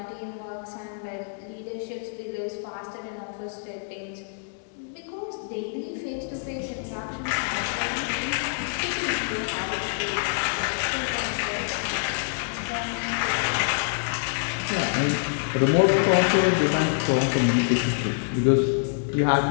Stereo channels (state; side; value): silent; right; digital silence